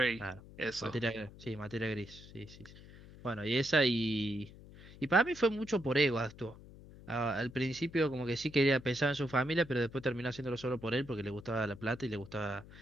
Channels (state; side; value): noise; left; hum, 18 dB below the sound